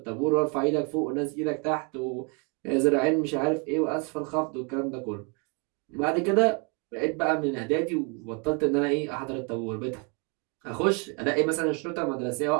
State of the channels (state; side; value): quieter; left; 34.7 dB